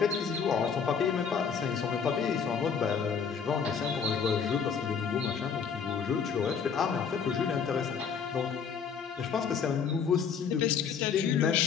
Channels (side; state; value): right; quieter; 6.6 dB